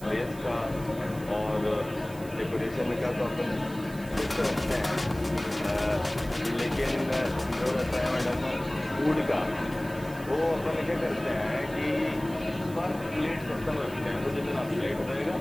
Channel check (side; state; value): right; noise; hiss, 19 dB below the sound